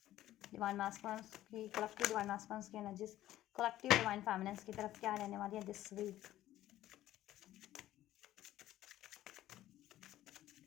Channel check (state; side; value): quieter; right; 13.9 dB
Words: divine masculines की, कलेक्टिव डिवाइन मैस्कुलिन्स की एनर्जीज कलेक्टिव डिवाइन फेमिनिन्स की तरफ क्या रहने वाली है दिस वीक।